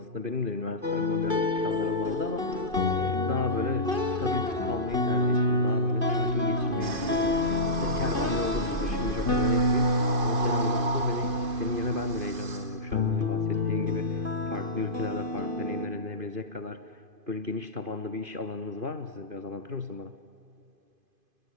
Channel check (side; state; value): left; late; 2.5 ms